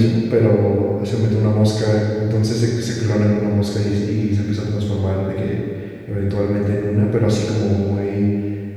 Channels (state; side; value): identical; both; correlation 1.00